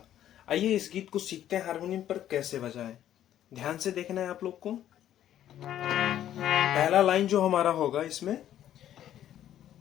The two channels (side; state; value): right; quieter; 11.5 dB